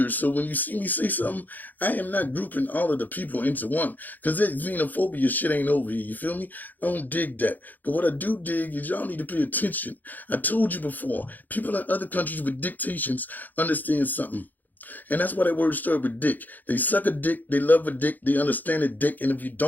So when you see me say something, I am not grouping all of the people into one. Because that xenophobia shit ain't over here. You feel me? I don't dig that. But what I do dig is y'all need to pay attention. I told you before, people in other countries with dictations understand something. And that's why that word started with dick. They suck a dick, they love a dick, they understand a dick, and if you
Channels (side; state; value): right; late; 0.084 ms